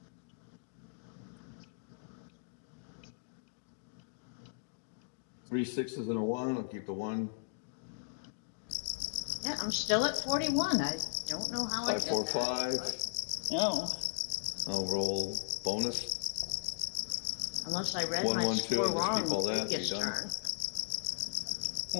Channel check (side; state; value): right; silent; digital silence